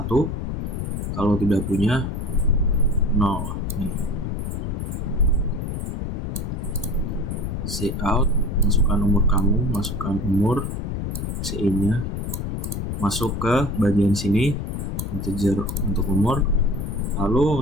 kalau tidak punya 0. Cout, masukkan umur kamu, masukkan umur, CI-nya, masuk ke bagian sini, integer untuk umur.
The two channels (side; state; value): left; noise; rumble, 3 dB below the sound